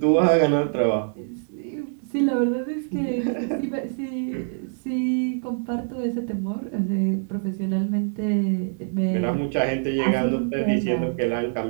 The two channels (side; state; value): left; silent; 62 dB below the other